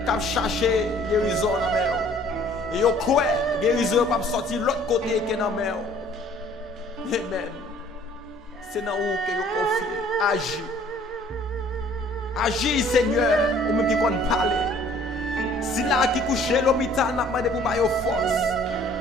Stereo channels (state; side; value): normal; both; correlation 0.56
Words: qui cherché guérison dans la mer. Et il croit guérison pas sortir de l'autre côté que dans la mer. Amen. C'est dans où que vous confiez. Agis. Agis, Seigneur, ou même qui compte parler. Si là qui couche l'hôpital, n'a pas de pour bailler force.